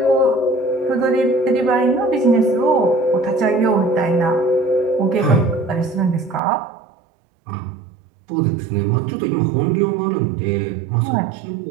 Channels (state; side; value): drops out; left; at 6.4 s